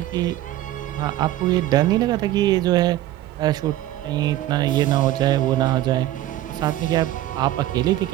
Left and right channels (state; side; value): quieter; left; 14.4 dB